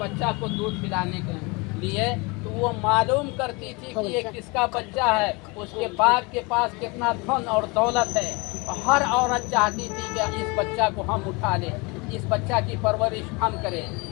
को दूध पिलाने के लिए, तो वो मालूम करती थी कि ये किसका बच्चा है, उसके बाप के पास कितना धन और दौलत है। हर औरत चाहती थी कि इस बच्चा को हम उठा लें, इस बच्चा की परवरिश हम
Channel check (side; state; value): right; quieter; 27.5 dB